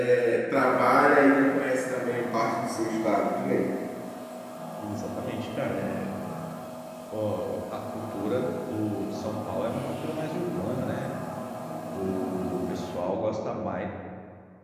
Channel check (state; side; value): identical; both; correlation 1.00